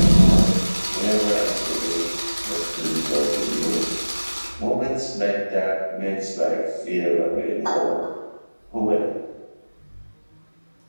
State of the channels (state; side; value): inverted; both; correlation -1.00